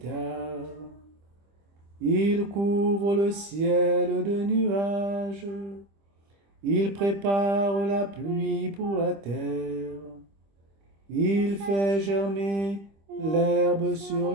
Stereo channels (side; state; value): left; late; 25 ms